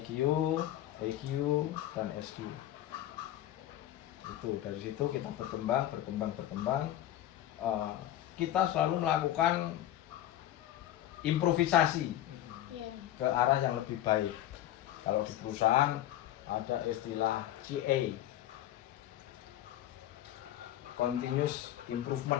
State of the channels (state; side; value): quieter; right; 12.9 dB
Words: EQ, dan SQ. Itu dari situ kita berkembang. Kita selalu melakukan improvisasi ke arah yang lebih baik. Kalau di perusahaan ada istilah CA, continuous